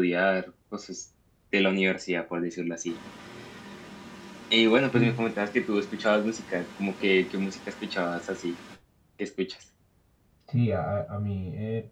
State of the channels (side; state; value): both; identical; correlation 1.00